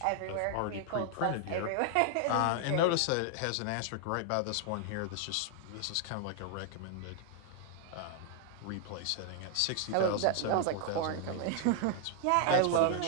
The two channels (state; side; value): different; both; correlation 0.00